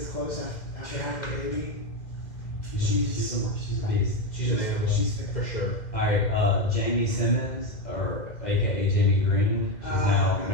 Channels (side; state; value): right; late; 2.1 ms